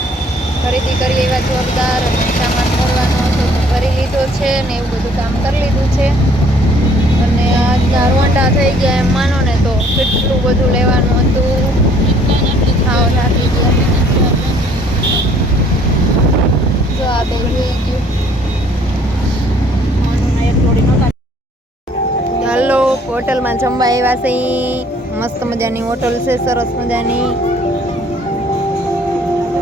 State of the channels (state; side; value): normal; both; correlation 0.59